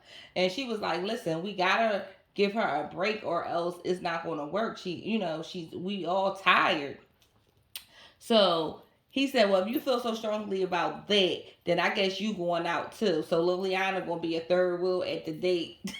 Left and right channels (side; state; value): both; identical; correlation 1.00